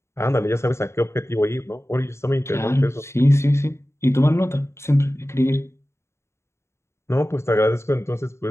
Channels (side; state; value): right; late; 0.13 ms